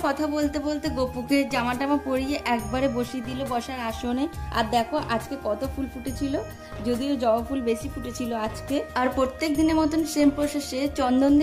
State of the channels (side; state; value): both; identical; correlation 1.00